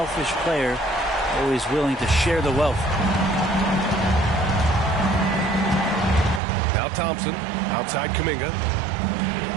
player, always willing to share the wealth. Now Thompson, outside Kuminga.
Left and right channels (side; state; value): left; drops out; at 6.4 s